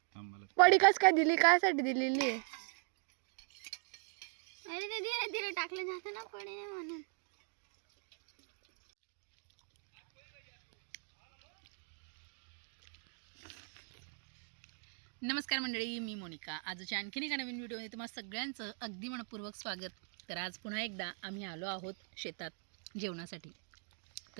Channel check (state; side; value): silent; left; 51 dB below the other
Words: थांब मला. पडी कस काय दिली? कायसाठी दिलेली आहे? अरे ते धीरे धीरे टाकलं जाते ना पडे म्हणून. नमस्कार मंडळी, मी मोनिका. आजच्या आणखीन एका नवीन व्हिडिओमध्ये तुम्हाला सगळ्यांचं अगदी मनपूर्वक स्वागत. तर आज पुन्हा एकदा आम्ही आलो आहोत शेतात जेवणासाठी.